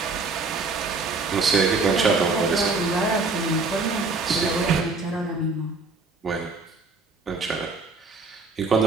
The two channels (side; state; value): left; quieter; 3.8 dB